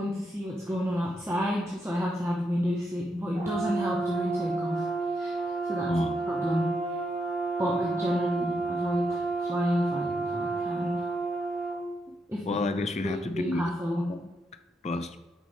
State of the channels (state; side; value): normal; both; correlation 0.81